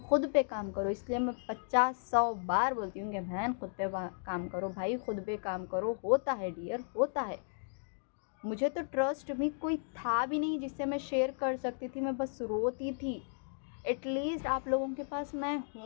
पे काम करो, इसलिए मैं 50-100 बार बोलती हूँ कि बहन खुद पे काम करो, भाई खुद पे काम करो। होता है डियर, होता है। मुझे तो ट्रस्ट भी कोई था भी नहीं जिससे मैं शेयर कर सकती थी, मैं बस रोती थी। एटलीस्ट आप लोगों के पास मैं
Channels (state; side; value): silent; right; digital silence